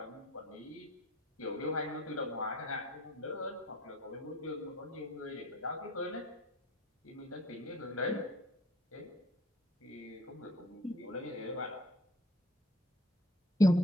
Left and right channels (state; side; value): normal; both; correlation 0.52